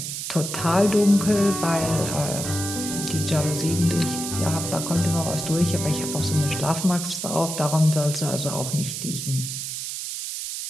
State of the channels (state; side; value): noise; right; hiss, 5 dB below the sound